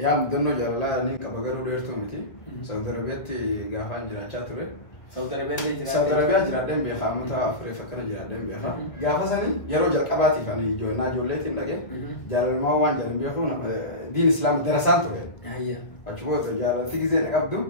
مدنو جالالاني كبغرو ديرتو متي سعودي عربيتي غافان جراچا توري سعودي عربيا سعودي عربيا جرادن بيخا متا افري فكر جرادن بيخا غافا سني يرو جقباتي كاني جونا جوليتين دغه جالال ما وان جالن بيخو دين اسلام درسان توري هيا اجبوت جالال في زين قبدو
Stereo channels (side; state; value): right; late; 1.7 ms